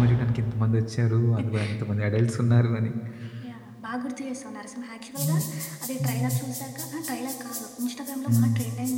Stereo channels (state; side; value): identical; both; correlation 1.00